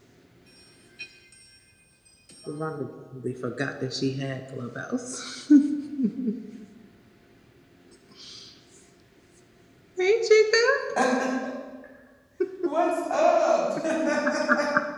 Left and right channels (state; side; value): identical; both; correlation 1.00